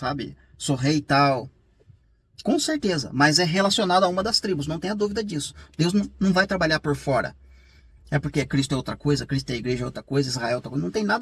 Sou rei e tal. Com certeza, mas é relacionado a uma das tribos, não tenha dúvida disso. Deus não vai trabalhar por fora. É porque Cristo é outra coisa, Cristo é a igreja é outra coisa, Israel é outra coisa. Não tem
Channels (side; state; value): both; identical; correlation 1.00